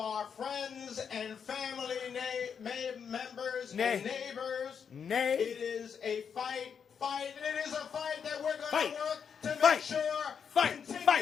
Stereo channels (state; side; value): quieter; right; 7.0 dB